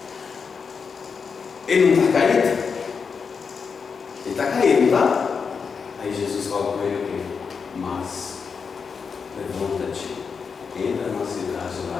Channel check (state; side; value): quieter; right; 5.7 dB